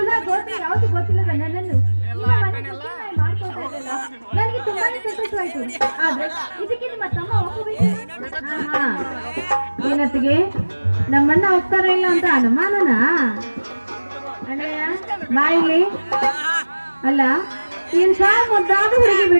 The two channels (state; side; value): inverted; both; correlation -1.00